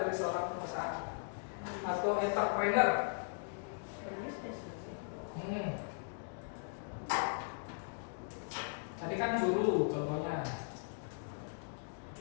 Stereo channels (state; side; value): silent; right; digital silence